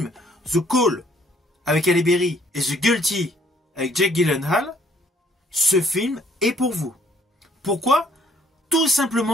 The Call avec Halle Berry et The Guilty avec Jake Gyllenhaal, ce film est pour vous. Pourquoi? Tout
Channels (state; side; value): normal; both; correlation 0.63